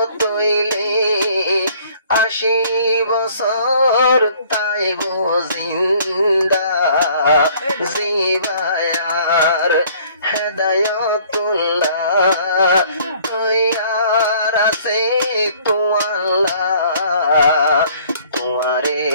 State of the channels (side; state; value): both; inverted; correlation -0.57